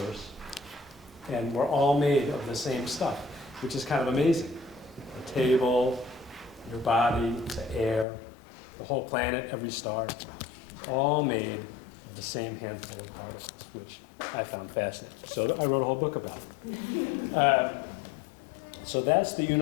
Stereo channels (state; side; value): drops out; right; at 8.1 s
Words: and we're all made of the same stuff, which is kind of amazing. The table, your body, the air, the whole planet, every star, all made of the same handful of particles, which I found fascinating. So I wrote a whole book about it. So that's the